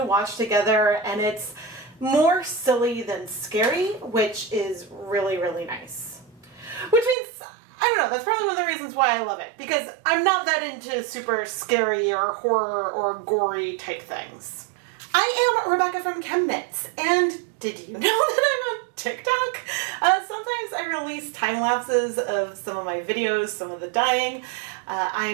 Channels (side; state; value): left; drops out; at 7.2 s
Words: watch together, and it's more silly than scary, which is really, really nice. Which means, I don't know, that's probably one of the reasons why I love it, because I'm not that into super scary or horror or gory type things. I am Rebecca from ChemKnits, and did you know that I'm on TikTok? Sometimes I release time lapses of some of my videos, some of the dyeing.